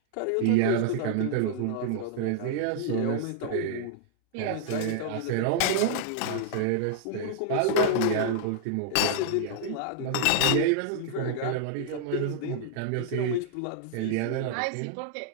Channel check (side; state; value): both; different; correlation -0.01